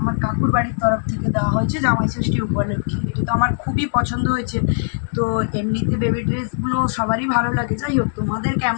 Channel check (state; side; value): silent; right; digital silence